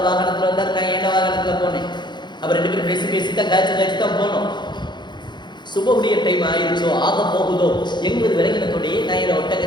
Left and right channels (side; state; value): right; late; 0.21 ms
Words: வாகனத்தில் வந்தார், நான் என்ன வாகனத்தில் போனேன். அவர் ரெண்டு பேரும் பேசி தான் காய்ச்சி தான் போனோம். சுபஹ்வுடைய டைம் ஆயிடுச்சோ, ஆக போகுதோ எங்களுக்கு விளங்கினத்தோடையே நான் இந்த